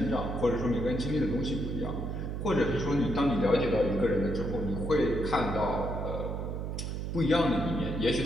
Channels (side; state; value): right; noise; hum, 4 dB below the sound